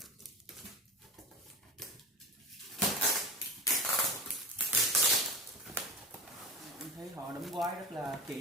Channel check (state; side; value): normal; both; correlation 0.31